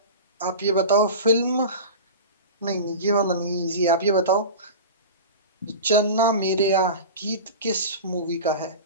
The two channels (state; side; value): inverted; both; correlation -0.30